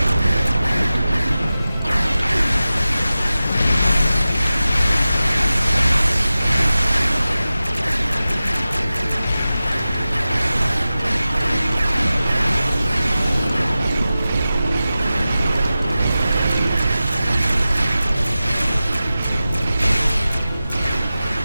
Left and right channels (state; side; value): inverted; both; correlation -0.95